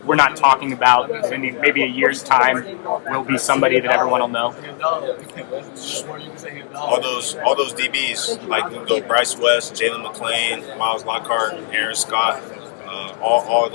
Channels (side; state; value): right; silent; digital silence